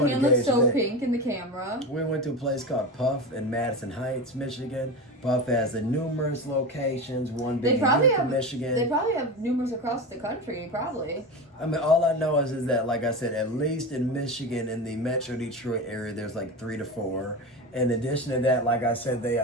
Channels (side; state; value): both; normal; correlation 0.23